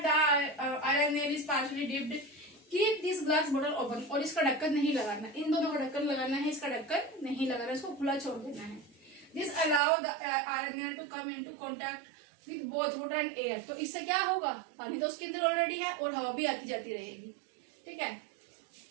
the iron nail is partially dipped. Keep this glass bottle open. और इसका ढक्कन नहीं लगाना, इन दोनों का ढक्कन लगाना है, इसका ढक्कन नहीं लगाना, इसको खुला छोड़ देना है। This allow the iron nail to come into contact with both water and air. तो इससे क्या होगा, पानी तो उसके अंदर ऑलरेडी है और हवा भी आती जाती रहेगी। ठीक है,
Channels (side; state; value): left; drops out; at 9.8 s